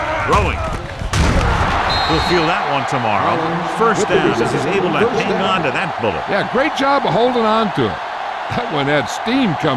Throwing. We'll feel that one tomorrow. First down as he's able to hang on to that bullet. Yeah, great job of holding on to it. That one had steam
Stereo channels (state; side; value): identical; both; correlation 1.00